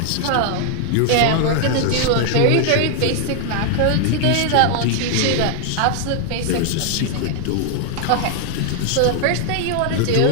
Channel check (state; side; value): different; both; correlation 0.00